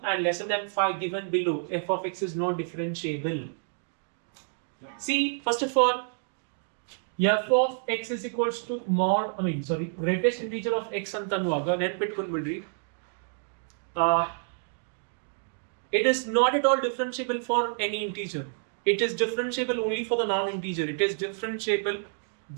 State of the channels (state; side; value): silent; left; digital silence